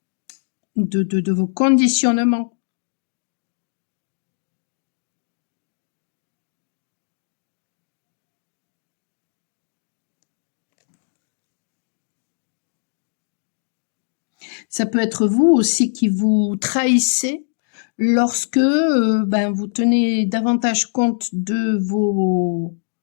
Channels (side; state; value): right; silent; digital silence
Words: de vos conditionnements. Ça peut être vous aussi qui vous trahissez lorsque ben, vous tenez davantage compte de